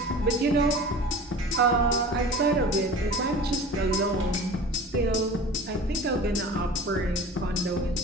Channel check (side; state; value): both; normal; correlation 0.39